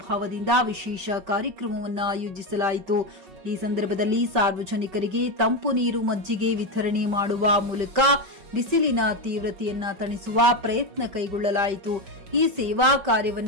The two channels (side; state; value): left; late; 5.2 ms